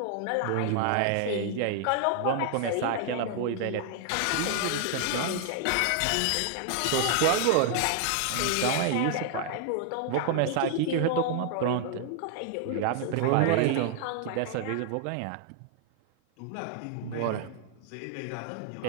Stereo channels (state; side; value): different; both; correlation 0.00